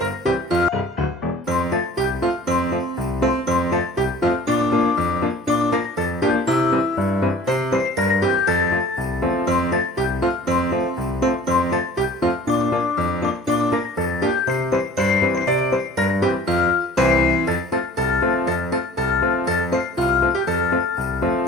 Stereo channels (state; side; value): normal; both; correlation 0.48